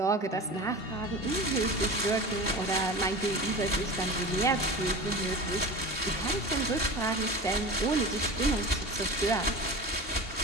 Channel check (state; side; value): late; right; 2.7 ms